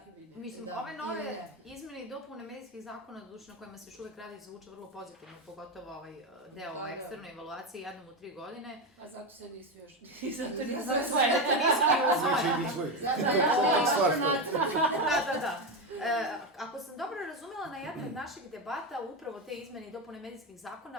Mislim, ove nove izmene i dopune medijskih zakona, na kojima se još uvek radi, zvuče vrlo pozitivno, pogotovo ovaj deo o eksternoj evaluaciji jednom u 3 godine. A zato se nisu još... Zato nisu usvojene. Da. Ako sam dobro razumela, na jednoj od naših debata upravo te izmene i dopune medijskih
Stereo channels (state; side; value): normal; both; correlation 0.13